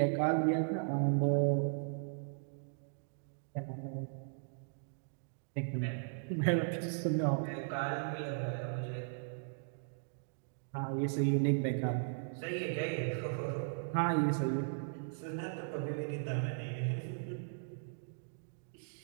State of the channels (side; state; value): left; silent; digital silence